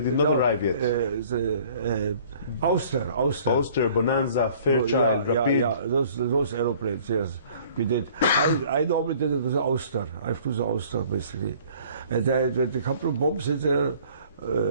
not arrive yet. Auster. Auster, Bonanza, Fairchild, Rapid. Yeah, those aeroplanes, yes. We did. I normally did it with the Auster. I flew the Auster, basically. And I had a couple of bombs in there.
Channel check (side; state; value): both; inverted; correlation -0.53